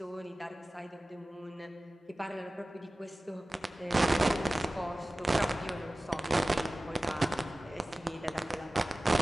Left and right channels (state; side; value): normal; both; correlation 0.97